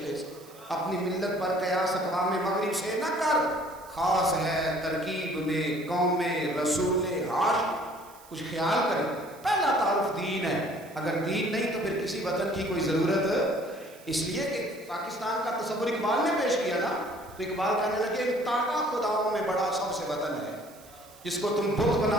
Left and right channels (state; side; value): noise; right; hiss, 23 dB below the sound